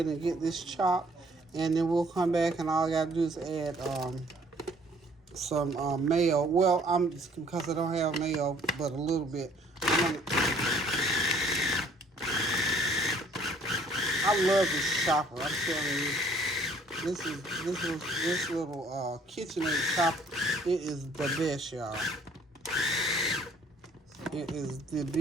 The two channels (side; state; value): both; normal; correlation 0.59